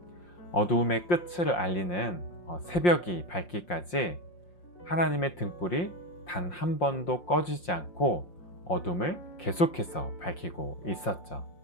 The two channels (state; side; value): late; right; 5.7 ms